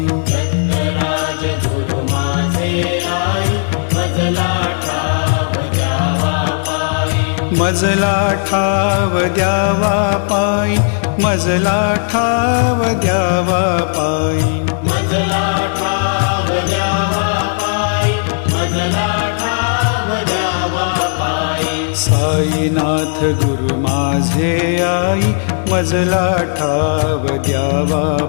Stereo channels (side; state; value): right; silent; 68 dB below the other